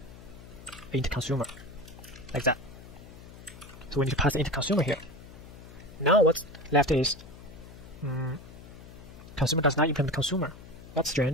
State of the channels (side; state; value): left; noise; hum, 17 dB below the sound